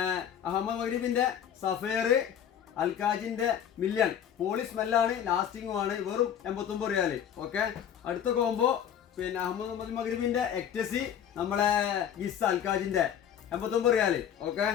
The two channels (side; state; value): right; quieter; 9.2 dB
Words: അഹമ്മദ് മഗ്രിബിന്റെ സഫേർ അൽക്കാജിന്റെ മില്യൺ പോളി സ്മെല്ലാണ്, ലാസ്റ്റിംഗും ആണ്. വെറും 89 റിയാൽ. ഓക്കെ, അടുത്ത കോംബോ അഹമ്മദ് മഗ്രിബിന്റെ എക്ടസി നമ്മളെ ഗിസ് അൽക്കാജിന്റെ 89 റിയാൽ. ഓക്കെ,